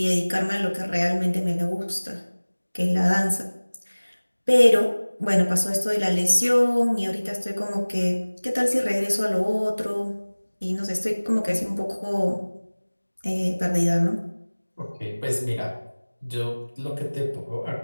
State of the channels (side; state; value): both; inverted; correlation -1.00